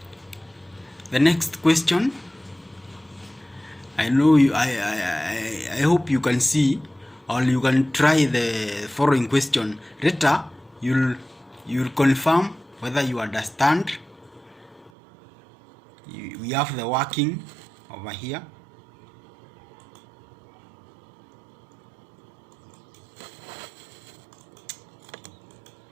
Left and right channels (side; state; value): left; drops out; at 14.9 s